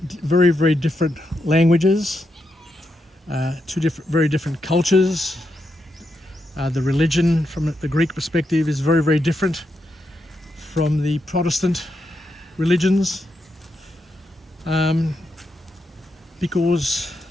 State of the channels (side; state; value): both; normal; correlation 0.83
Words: very, very different languages, 2 very different cultures. The religion from the Greek perspective is very, very different from the Protestant religions, because